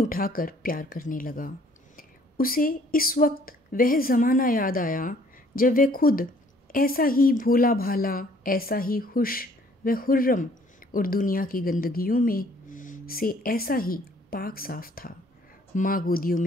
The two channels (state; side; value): normal; both; correlation 0.59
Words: प्यार करने लगा। उसे इस वक्त वह ज़माना याद आया जब वह खुद ऐसा ही भोला भाला, ऐसा ही खुश व खुर्रम और दुनिया की गंदगियों में से ऐसा ही पाक साफ था। माँ गोदियों